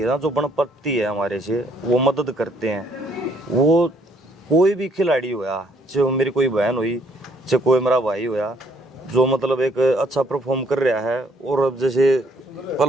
ना, जो बन पड़ती है हमारे से, वो मदद करते हैं। वो कोई भी खिलाड़ी होया, चाहे मेरी कोई बहन हुई, चाहे कोई मेरा भाई होया, जो मतलब एक अच्छा परफॉर्म कर रहा है। और अब जैसे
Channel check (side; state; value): both; normal; correlation 0.66